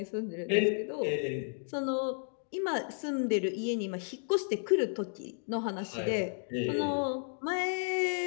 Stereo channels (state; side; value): silent; right; digital silence